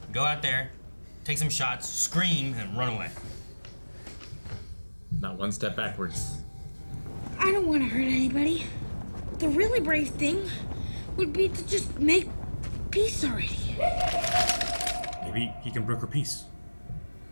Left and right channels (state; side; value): inverted; both; correlation -1.00